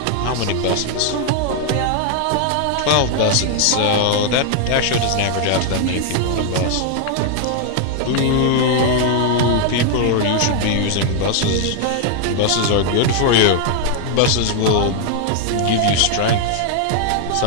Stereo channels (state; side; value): different; both; correlation 0.00